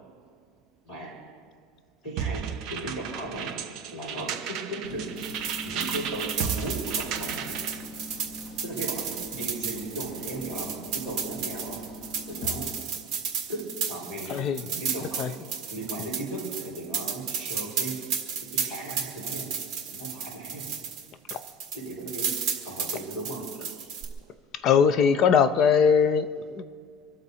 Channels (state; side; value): normal; both; correlation 0.36